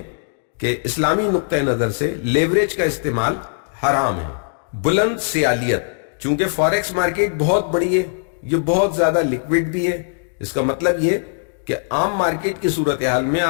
کہ اسلامی نقطہ نظر سے لیوریج کا استعمال حرام ہے۔ بلند سیالیت، چونکہ فاریکس مارکیٹ بہت بڑی ہے، یہ بہت زیادہ لیکوڈ بھی ہے۔ اس کا مطلب یہ کہ عام مارکیٹ کی صورتحال میں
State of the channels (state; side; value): silent; right; digital silence